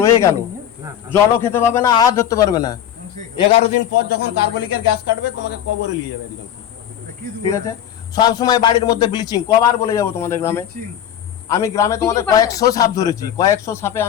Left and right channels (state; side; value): quieter; right; 10.2 dB